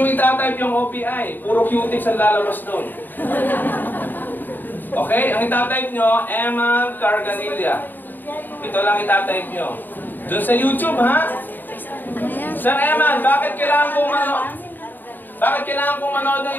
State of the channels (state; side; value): late; right; 0.090 ms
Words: itatype yung OPI. Puro cutics ang lalabas doon. Okay? Ang itatype nyo, Eman Carganilla. Ito lang itatype nyo. Doon sa YouTube, ha? Sir Eman, bakit kailangan kong manood ng